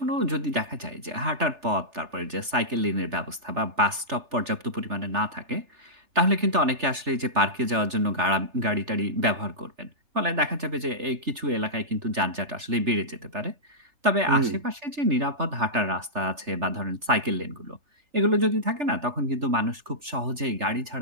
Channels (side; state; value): left; late; 3.3 ms